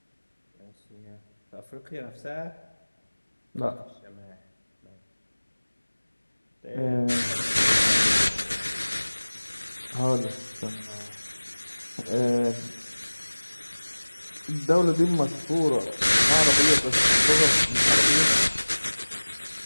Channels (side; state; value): both; inverted; correlation -1.00